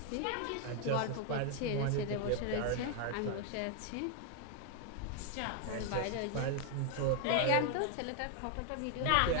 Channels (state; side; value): different; both; correlation 0.00